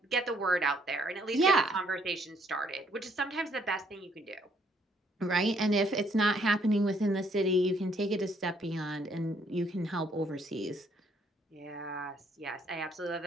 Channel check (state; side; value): normal; both; correlation 0.67